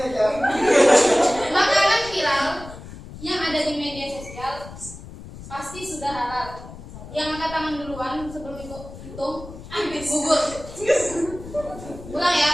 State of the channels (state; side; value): noise; left; rumble, 14 dB below the sound